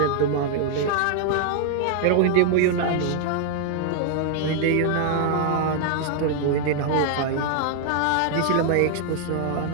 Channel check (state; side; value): different; both; correlation 0.00